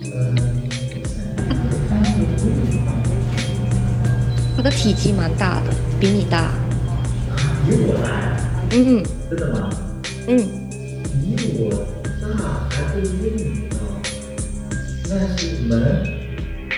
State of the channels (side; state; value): both; identical; correlation 1.00